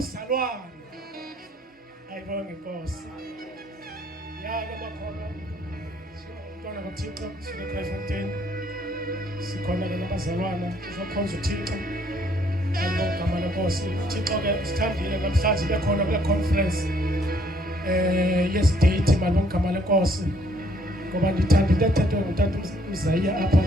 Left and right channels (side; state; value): both; normal; correlation 0.65